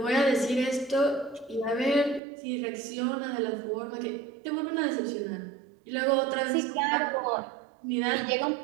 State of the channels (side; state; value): left; drops out; at 2.2 s